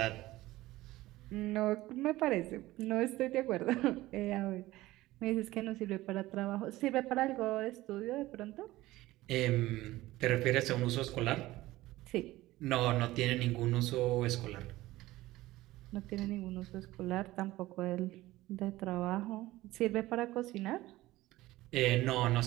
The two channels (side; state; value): left; quieter; 17.5 dB